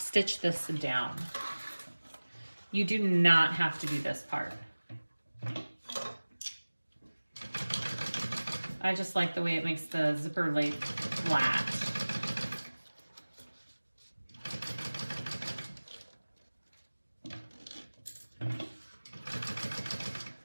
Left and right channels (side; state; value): both; inverted; correlation -1.00